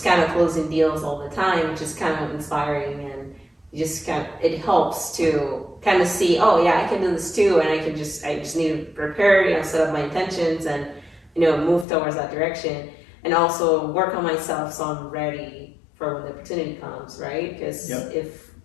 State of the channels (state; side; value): drops out; right; at 11.9 s